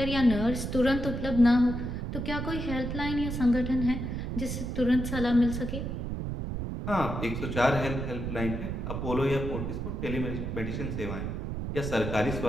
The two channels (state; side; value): noise; right; rumble, 4 dB below the sound